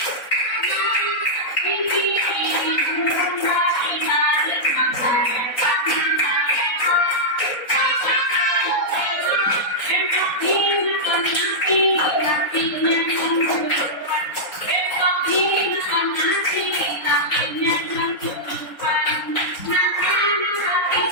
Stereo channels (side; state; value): right; late; 4.0 ms